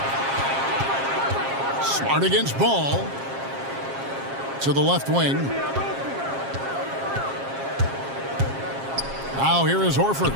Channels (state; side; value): late; left; 7.4 ms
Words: Smart against Ball. To the left wing. Now here is Horford.